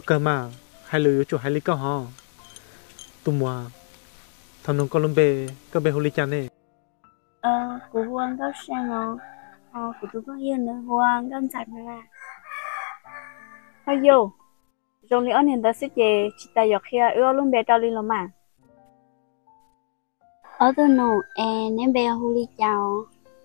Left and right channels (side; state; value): right; silent; digital silence